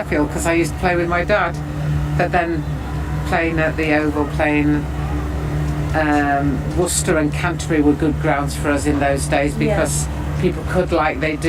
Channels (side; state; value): both; identical; correlation 1.00